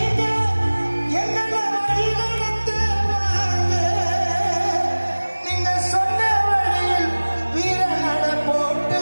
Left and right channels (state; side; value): inverted; both; correlation -1.00